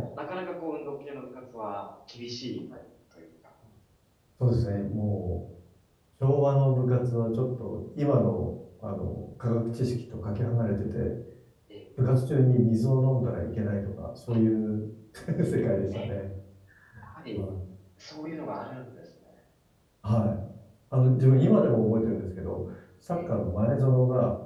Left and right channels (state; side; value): identical; both; correlation 1.00